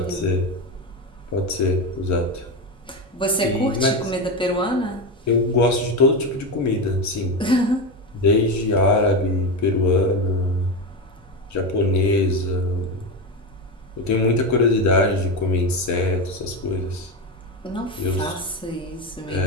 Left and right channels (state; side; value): normal; both; correlation 0.16